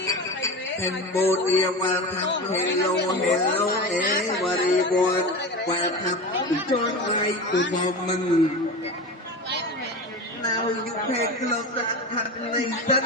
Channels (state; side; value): normal; both; correlation 0.27